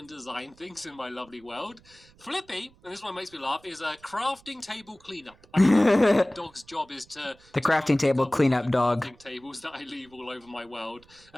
design things in my lovely world. Flippy, and this one makes me laugh, is a crafting table cleanup. The dog's job is to... The crafting table cleanup dog. Crafting tables that I leave all over my world.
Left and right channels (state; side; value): noise; right; rumble, 28 dB below the sound